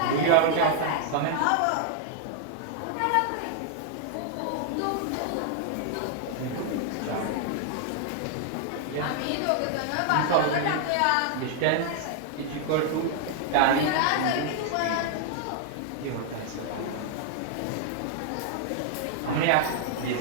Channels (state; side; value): different; both; correlation 0.00